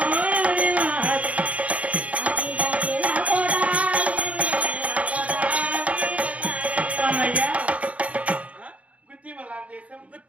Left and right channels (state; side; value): late; left; 0.066 ms